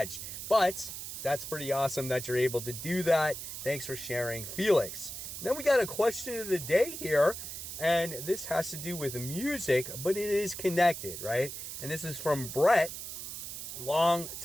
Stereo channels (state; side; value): noise; right; hiss, 8 dB below the sound